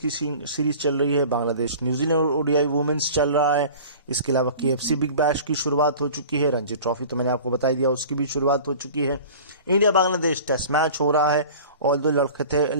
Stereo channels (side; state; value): both; inverted; correlation -0.42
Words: सीरीज चल रही है, बांग्लादेश न्यूजीलैंड ओडीआई वुमेन्स चल रहा है, इसके अलावा केएफसी बिग बैश की शुरुआत हो चुकी है, रणजी ट्रॉफी तो मैंने आपको बता ही दिया उसकी भी शुरुआत हो चुकी है, इंडिया बांग्लादेश टेस्ट मैच हो रहा है, और दो लड़खड़ाते